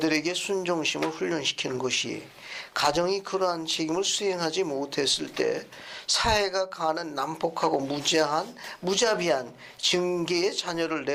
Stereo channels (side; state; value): both; identical; correlation 1.00